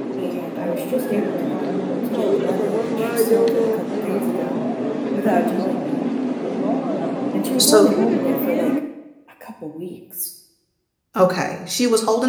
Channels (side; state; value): both; identical; correlation 1.00